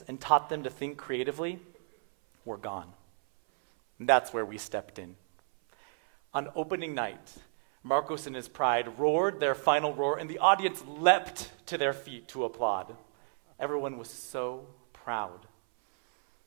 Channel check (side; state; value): left; silent; 57 dB below the other